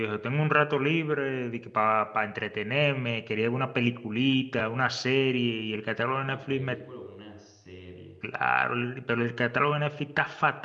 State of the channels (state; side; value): identical; both; correlation 1.00